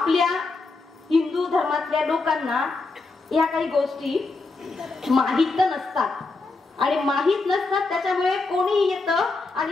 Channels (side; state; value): right; quieter; 3.7 dB